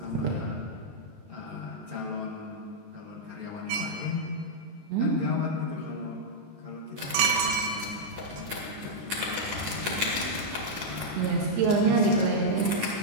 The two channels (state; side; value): late; left; 20 ms